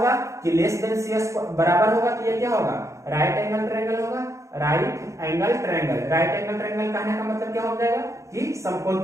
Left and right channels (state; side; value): late; left; 0.15 ms